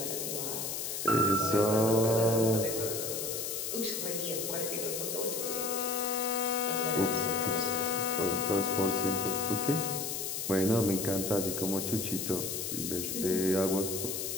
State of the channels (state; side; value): noise; left; hiss, 3 dB below the sound